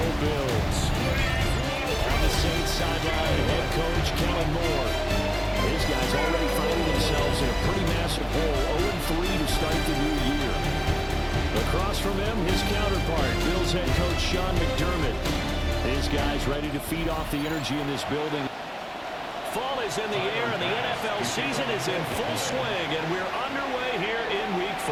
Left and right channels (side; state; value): both; identical; correlation 1.00